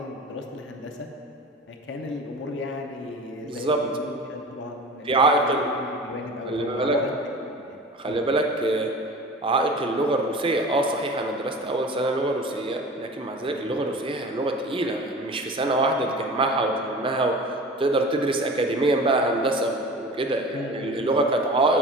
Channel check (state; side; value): normal; both; correlation 0.37